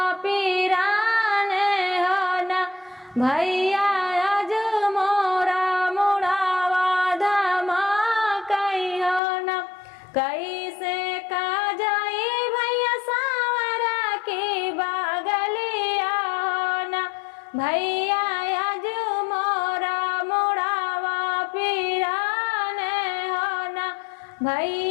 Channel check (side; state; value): right; drops out; at 9.2 s